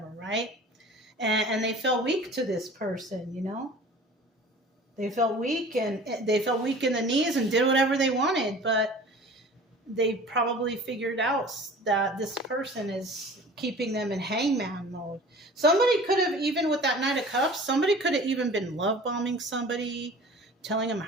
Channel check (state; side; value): normal; both; correlation 0.43